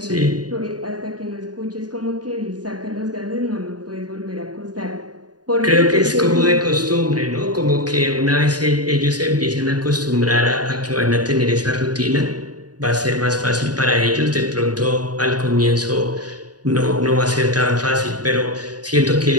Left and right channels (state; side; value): late; left; 0.69 ms